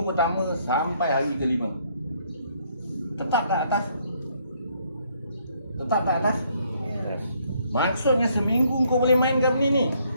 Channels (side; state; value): both; inverted; correlation -0.68